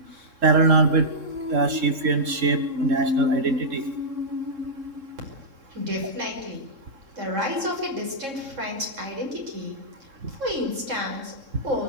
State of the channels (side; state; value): left; late; 3.7 ms